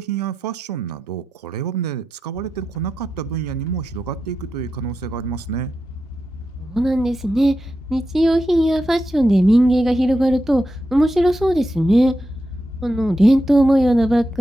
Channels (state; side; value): normal; both; correlation 0.88